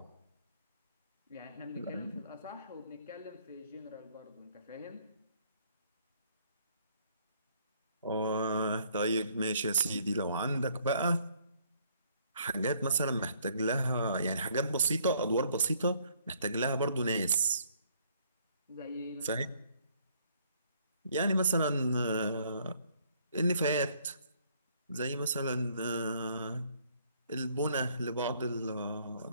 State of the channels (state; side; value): inverted; both; correlation -0.64